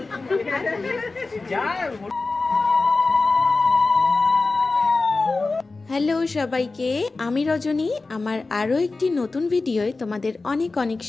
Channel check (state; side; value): quieter; right; 3.6 dB